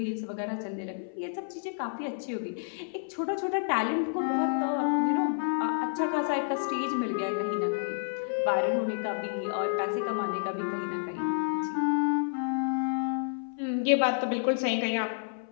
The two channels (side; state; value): right; silent; 57 dB below the other